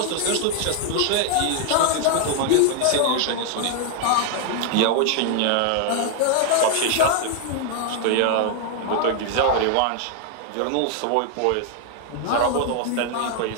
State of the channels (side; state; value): both; different; correlation 0.00